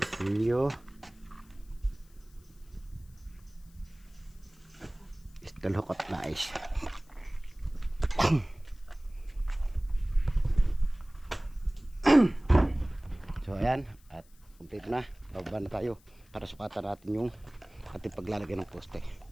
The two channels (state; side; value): noise; left; hiss, 29 dB below the sound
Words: Steel hook at nais. So ayan, at complete na. Bababa na tayo para sukatan natin yung ating paglalagay ng poste.